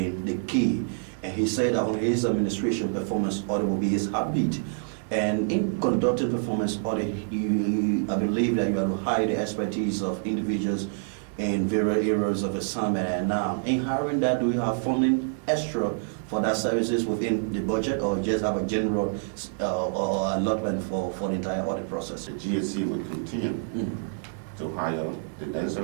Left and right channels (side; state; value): left; silent; digital silence